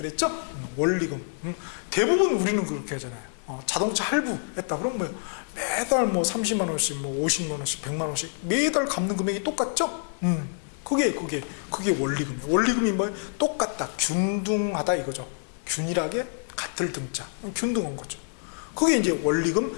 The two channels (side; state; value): right; silent; digital silence